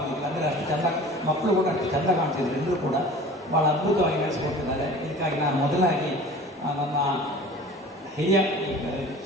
ಅಂದರೆ ಅಷ್ಟು ಚೆಂದ ಮಕ್ಕಳು ಕೂಡ ಅಷ್ಟು ಚೆಂದ ಕಾಣ್ತಿದ್ರು, ಎಲ್ಲರೂ ಕೂಡ ಭಾಳ ಅದ್ಭುತವಾಗಿ ನಡೆಸಿಕೊಟ್ಟಿದ್ದಾರೆ. ಇದಕ್ಕಾಗಿ ನಾನು ಮೊದಲಾಗಿ ನನ್ನ ಹಿರಿಯ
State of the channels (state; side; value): normal; both; correlation 0.42